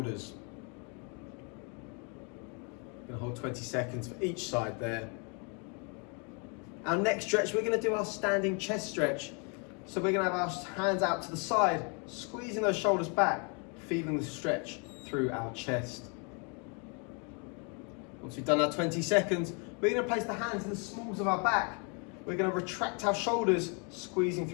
We're going to hold 20 seconds for each side there. Our next stretch, we're going to do our standing chest stretch. So we're going to have our hands out to the side, squeezing those shoulders back, feeling the stretch through our chest. Once we've done our 20 seconds, we're going to place the hands in the smalls of our back. We're going to retract our shoulders, squeezing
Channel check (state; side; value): quieter; right; 35.7 dB